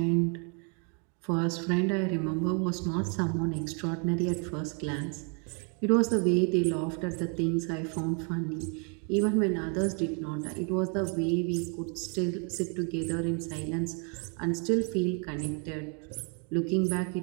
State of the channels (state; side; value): quieter; left; 37.6 dB